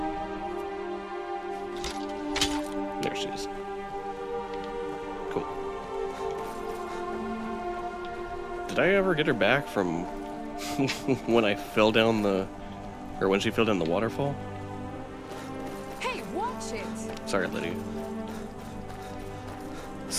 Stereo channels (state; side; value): identical; both; correlation 1.00